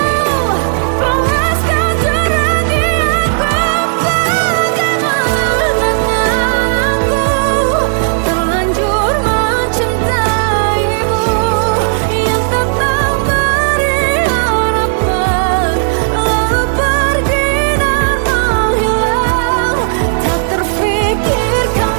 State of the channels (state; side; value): silent; left; digital silence